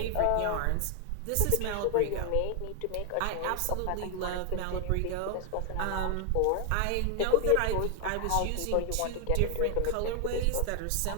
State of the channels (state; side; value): different; both; correlation 0.00